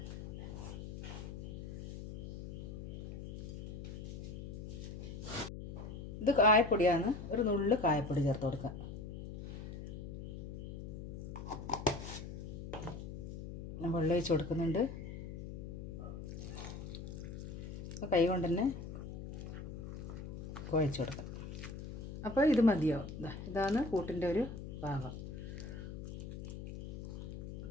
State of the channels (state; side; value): noise; left; hum, 9 dB below the sound